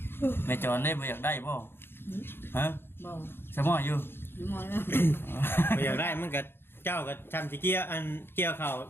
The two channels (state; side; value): late; right; 0.11 ms